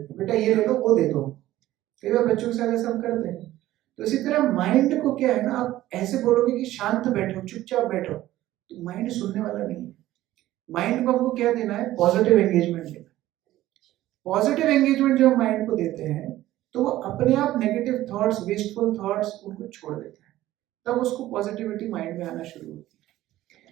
हैं, बेटा ये ले लो, वो दे दो। कई बार बच्चों के साथ ऐसा हम करते हैं। तो इसी तरह माइंड को क्या है ना, आप ऐसे बोलोगे कि शांत बैठो, चुपचाप बैठो, तो माइंड सुनने वाला नहीं है। माइंड को हमको क्या देना है, पॉजिटिव एंगेजमेंट देना। पॉजिटिव एंगेजमेंट जब माइंड को देते हैं तो वो अपने आप नेगेटिव थॉट्स, वेस्टफुल थॉट्स उनको छोड़ देता है, तब उसको पॉजिटिविटी माइंड में आना शुरू होती है।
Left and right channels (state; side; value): quieter; left; 15.0 dB